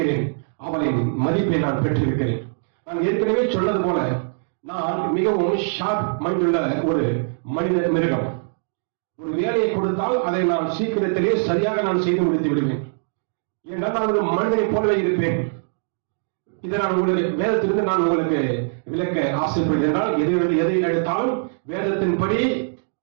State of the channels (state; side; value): silent; left; digital silence